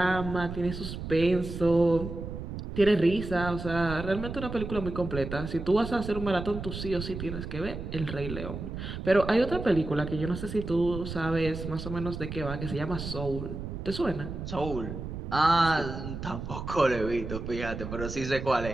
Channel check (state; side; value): noise; right; rumble, 7 dB below the sound